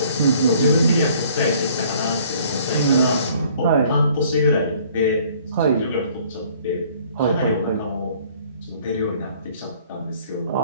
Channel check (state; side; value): inverted; both; correlation -0.57